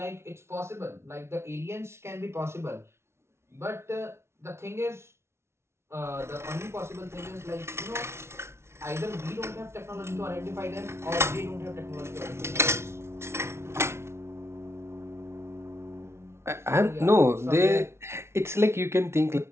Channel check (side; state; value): left; late; 0.13 ms